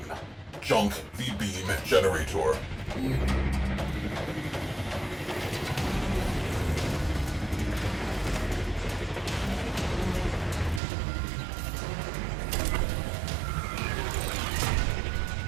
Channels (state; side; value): drops out; left; at 10.8 s